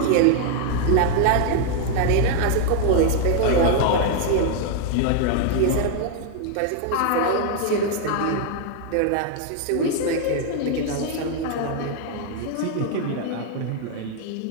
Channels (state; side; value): different; both; correlation 0.00